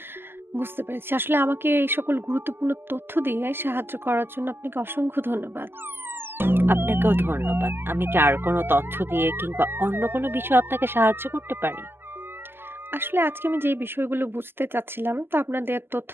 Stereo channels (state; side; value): late; left; 0.11 ms